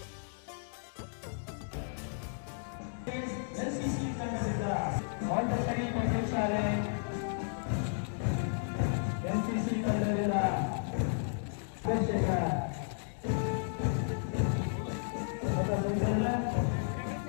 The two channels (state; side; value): silent; right; digital silence